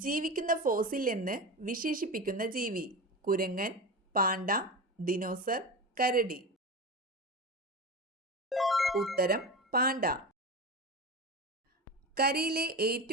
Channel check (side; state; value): both; normal; correlation 0.25